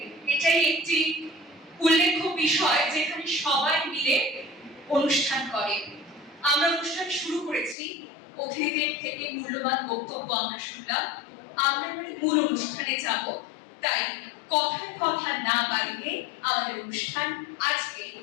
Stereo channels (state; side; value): drops out; right; at 7.8 s